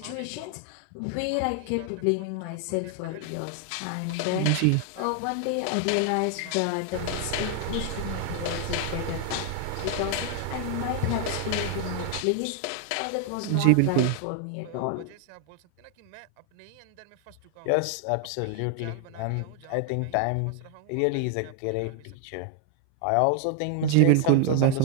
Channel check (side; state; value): both; different; correlation 0.00